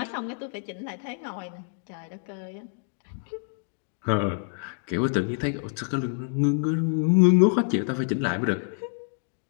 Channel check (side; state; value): right; silent; 60 dB below the other